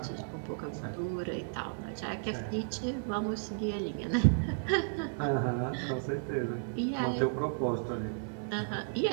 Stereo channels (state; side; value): silent; left; digital silence